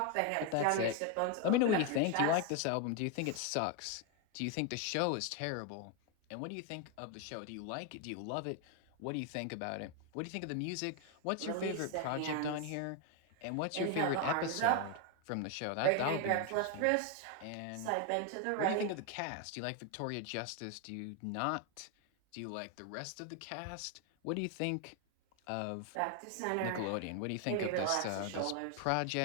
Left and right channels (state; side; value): different; both; correlation 0.01